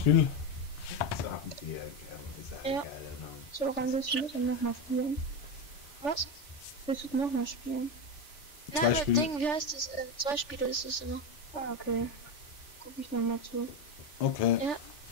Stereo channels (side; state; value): right; late; 3.4 ms